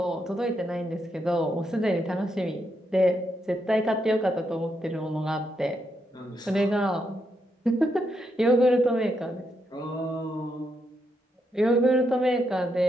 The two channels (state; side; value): normal; both; correlation 0.80